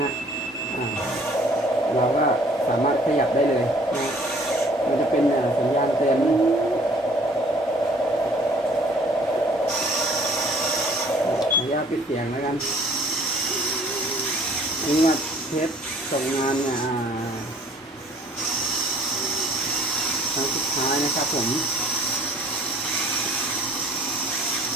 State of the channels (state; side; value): normal; both; correlation 0.55